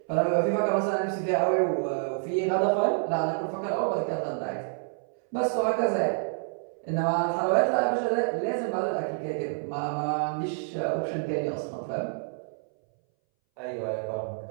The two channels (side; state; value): left; silent; 59 dB below the other